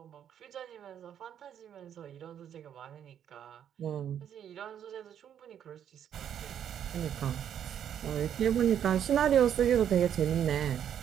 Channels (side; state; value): left; quieter; 9.4 dB